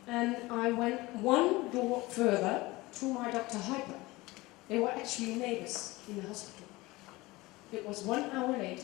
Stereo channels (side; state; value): right; quieter; 20.9 dB